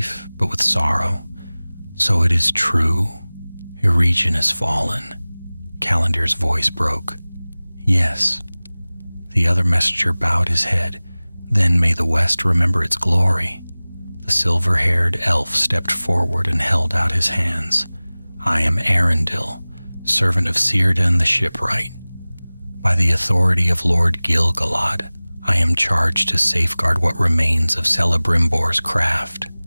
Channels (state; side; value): inverted; both; correlation -1.00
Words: but with sorrow. So it is true. Eregion has fallen. Callandir's voice broke. Yes. The other messenger bowed his head. Then may the West remember its glory. The silver-haired elf stepped forward and held out his hands. I am Arundel, servant of Círdan the shipwright. By the authority of Lord Gil-galad, I am charged to safeguard what remains of Celebrimbor's craft.